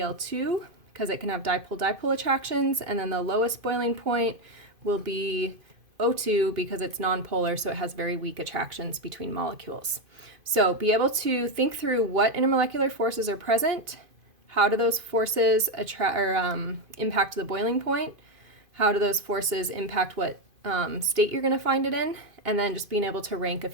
because it can have dipole-dipole attractions. And then the lowest boiling point will be O2, because it's nonpolar, so it has very weak attractions between molecules. So be able to think through what intermolecular forces are present, how do those forces impact the boiling point, how do those forces impact what state you're going to find it in, and then just being able to rank a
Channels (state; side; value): late; left; 2.5 ms